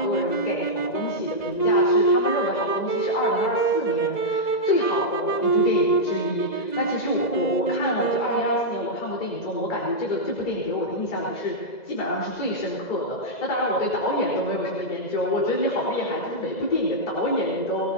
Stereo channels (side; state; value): right; late; 2.0 ms